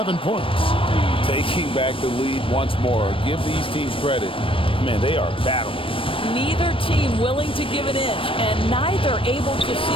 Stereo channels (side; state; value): right; late; 0.25 ms